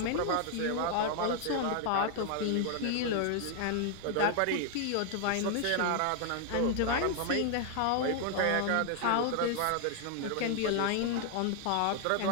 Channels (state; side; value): different; both; correlation 0.00